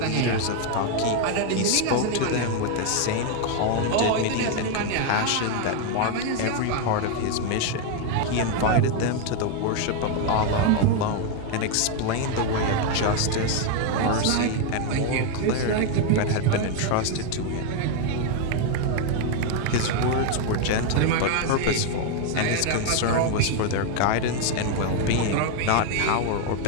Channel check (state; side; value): different; both; correlation 0.01